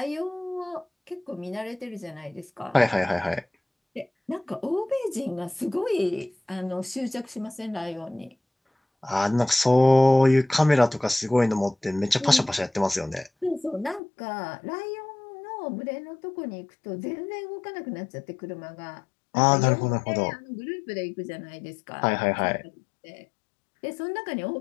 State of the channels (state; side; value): drops out; right; at 14.0 s